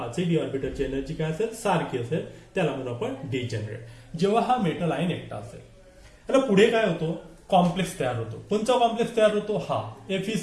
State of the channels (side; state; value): both; identical; correlation 1.00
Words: d ऑर्बिटलची energy काय असेल? सारखी असेल. त्याला म्हणून आपण डिजेनरेट. जेव्हा हा मेटल आयन एकटा असेल, त्याला पुढे काय होतो? कॉम्प्लेक्स तयार होतो. कोणता कॉम्प्लेक्स तयार होतो? हा